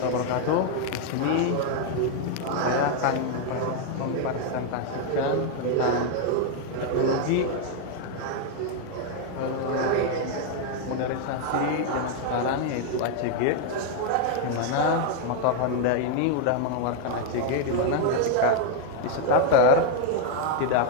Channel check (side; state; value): both; different; correlation 0.00